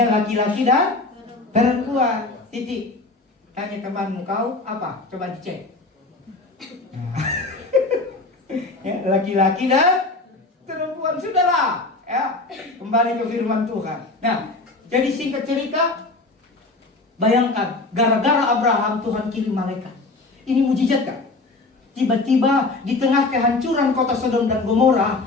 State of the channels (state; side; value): quieter; right; 3.3 dB